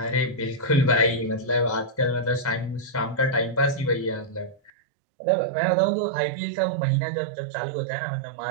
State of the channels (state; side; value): drops out; left; at 4.7 s